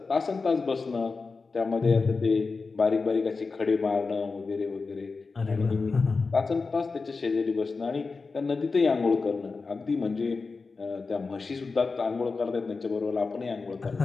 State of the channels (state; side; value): quieter; right; 4.3 dB